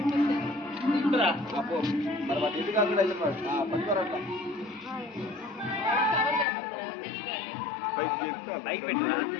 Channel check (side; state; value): right; drops out; at 6.5 s